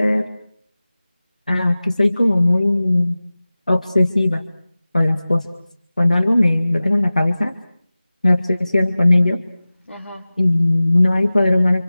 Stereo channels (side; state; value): both; inverted; correlation -0.97